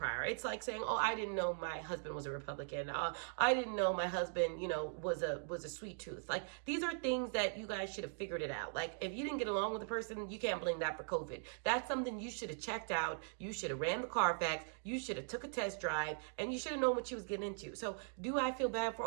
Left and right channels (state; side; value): silent; left; digital silence